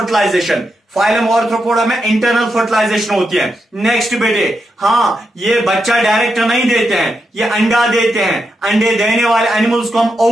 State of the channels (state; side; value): normal; both; correlation 0.85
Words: फाइलम ऑर्थ्रोपोडा में इंटरनल फर्टिलाइजेशन होती है। नेक्स्ट बेटे, हाँ ये बच्चा डायरेक्ट नहीं देते हैं, ये अंडा देते हैं। अंडे देने वाले एनिमल्स को हम